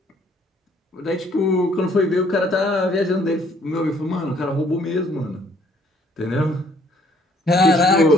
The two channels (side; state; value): both; normal; correlation 0.63